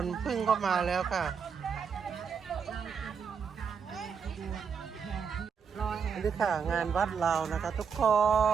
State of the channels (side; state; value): left; quieter; 6.4 dB